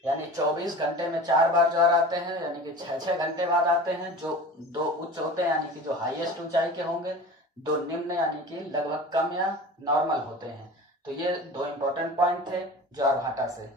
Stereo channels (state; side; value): normal; both; correlation 0.37